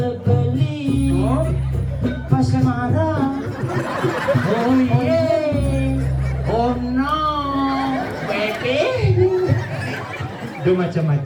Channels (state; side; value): identical; both; correlation 1.00